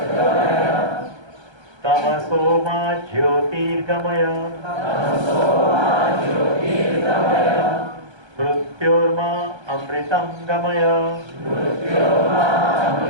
तमसो मा ज्योतिर्गमय मृत्योर्मा अमृतं गमय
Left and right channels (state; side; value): late; left; 1.3 ms